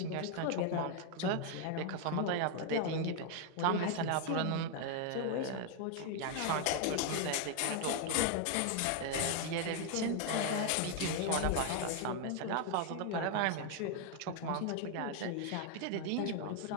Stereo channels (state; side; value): different; both; correlation 0.00